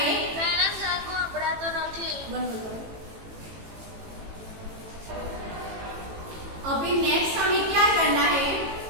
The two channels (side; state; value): left; late; 18 ms